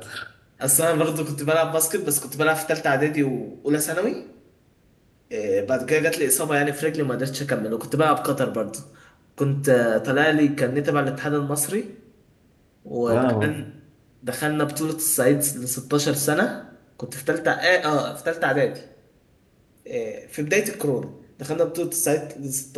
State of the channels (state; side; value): identical; both; correlation 1.00